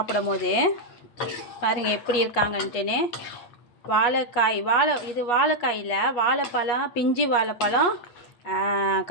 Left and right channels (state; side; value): late; right; 8.4 ms